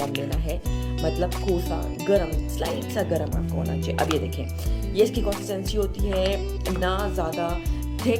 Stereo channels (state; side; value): identical; both; correlation 1.00